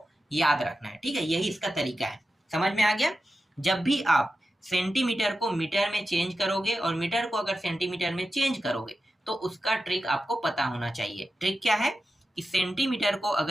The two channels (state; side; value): normal; both; correlation 0.91